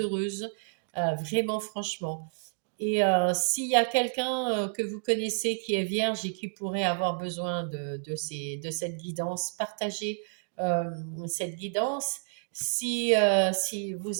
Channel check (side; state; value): left; silent; digital silence